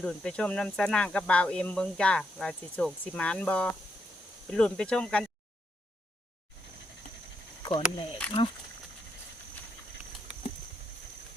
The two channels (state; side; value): normal; both; correlation 0.78